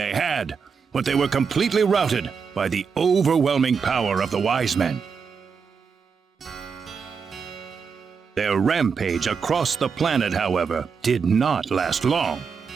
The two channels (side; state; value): left; quieter; 5.9 dB